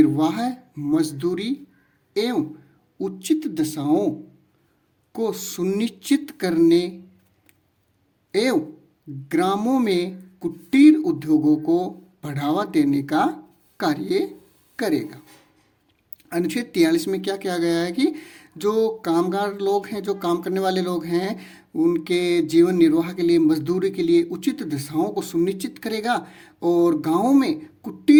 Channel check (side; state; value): both; identical; correlation 1.00